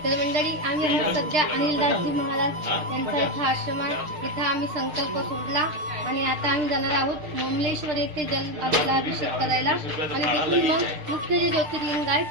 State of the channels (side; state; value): left; late; 6.6 ms